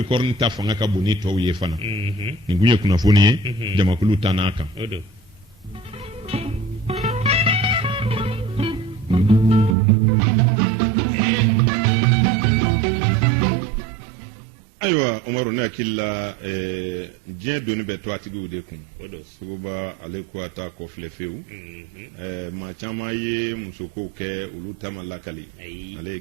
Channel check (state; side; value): drops out; left; at 9.8 s